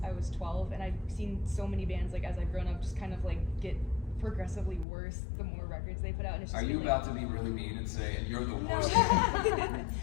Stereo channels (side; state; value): right; drops out; at 4.9 s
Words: I was 12, and I've seen so many bands like as I've grown up just kind of like get progressively worse the more records they put out. And it's just Are you been, about to be really mean and say, and you're the worst? No.